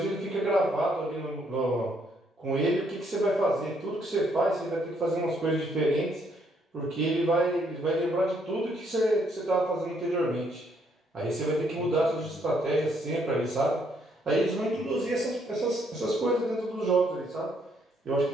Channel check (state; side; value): normal; both; correlation 0.70